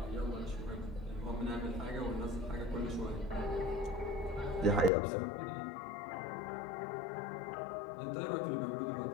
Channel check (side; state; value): right; drops out; at 4.9 s